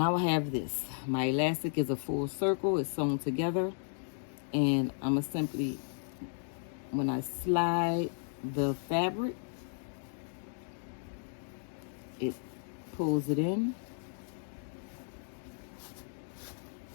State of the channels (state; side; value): silent; right; digital silence